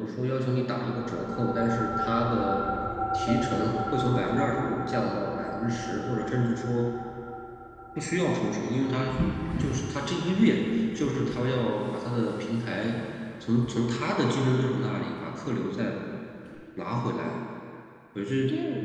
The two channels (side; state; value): both; identical; correlation 1.00